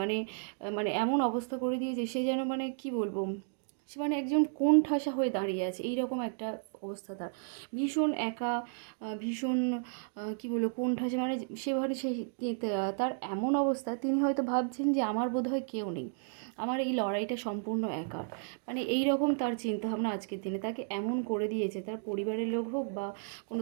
মানে এমন অবস্থা করে দিয়েছে সে যেন মানে কি বলবো, সে মানে একজন কোণঠাসা হয়ে দাঁড়িয়ে আছে, এইরকম একটা অবস্থা তার। ভীষণ একা, ভীষণ কী বলবো কোণঠাসা, মানে সে তার এমন অবস্থা, তিনি হয়তো ভাবছেন যে আমার বোধহয় কেউ নেই, আমার এই লড়াইটা সম্পূর্ণ একার। মানে এই রকম তার চিন্তাভাবনা আজকের দিনে। তাকে এমন করে দিয়েছে, তার পরিবারের লোক হোক বা কোনো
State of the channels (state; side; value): silent; left; digital silence